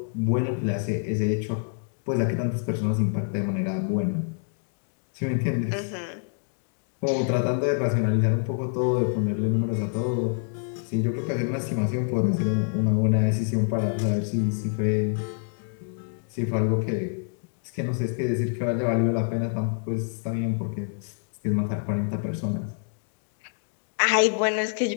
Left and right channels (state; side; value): silent; right; digital silence